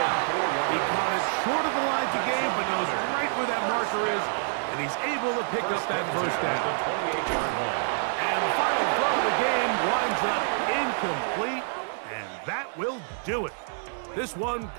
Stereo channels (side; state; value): left; silent; digital silence